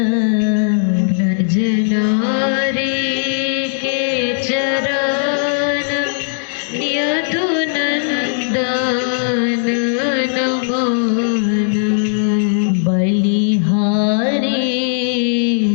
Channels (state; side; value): silent; right; digital silence